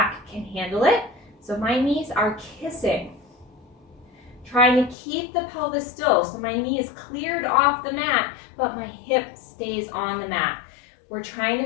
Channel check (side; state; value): right; drops out; at 5.0 s